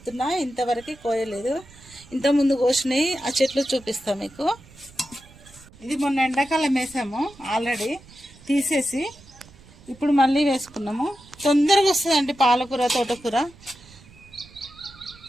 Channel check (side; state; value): right; noise; rumble, 23 dB below the sound